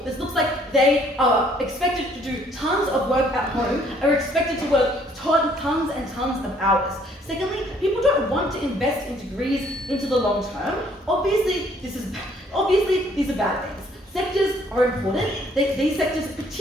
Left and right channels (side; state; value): both; normal; correlation 0.62